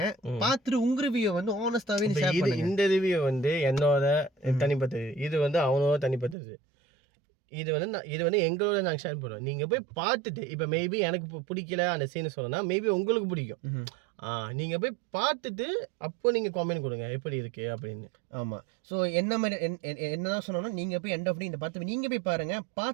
பார்த்துட்டு உங்கள் ரிவ்யூ வந்து ஆனஸ்டாகவே ஷேர் பண்ணுங்க. இந்த ரிவ்யூ வந்து என்னோட தனிப்பட்டது, இது வந்து அவனோட தனிப்பட்டது. இது வந்து எங்களோட நாங்கள் ஷேர் பண்ணுவோம். நீங்கள் போய் பார்த்துட்டு இப்போ மேபி எனக்கு பிடிக்கல அந்த சீனை சொல்லணும்னா மேபி உங்களுக்கு பிடிக்கும். நீங்கள் போய் பார்த்துட்டு அப்போ நீங்கள் காமெண்ட் கொடுங்க எப்படி இருக்கு அப்படின்னு. ஆமாம். ஸோ என்ன மாதிரி என்னதான் சொன்னோம்னா நீங்கள் போய் எண்ட் ஆஃப் இந்த பார்த்து நீங்கள் போய் பாருங்கள்,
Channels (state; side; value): drops out; left; at 6.4 s